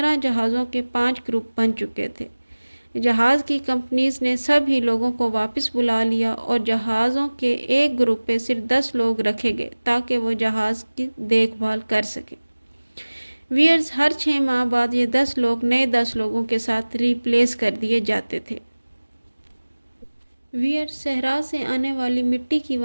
جہازوں کے 5 گروپ بن چکے تھے۔ جہاز کی کمپنیز نے سب ہی لوگوں کو واپس بلا لیا اور جہازوں کے ایک گروپ پہ صرف 10 لوگ رکھے گئے تاکہ وہ جہاز کی دیکھ بھال کر سکیں۔ ویئرز، ہر 6 ماہ بعد یہ 10 لوگ نئے 10 لوگوں کے ساتھ ریپلیس کر دیے جاتے تھے۔ ویئرز، صحرا سے آنے والی مٹی کی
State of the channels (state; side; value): inverted; both; correlation -1.00